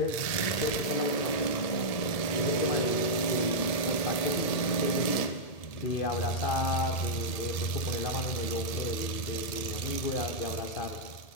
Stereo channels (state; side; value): late; right; 1.8 ms